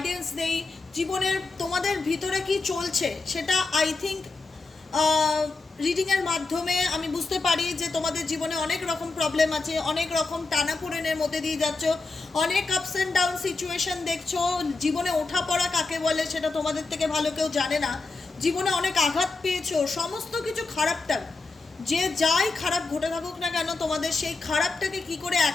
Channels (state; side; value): quieter; right; 3.7 dB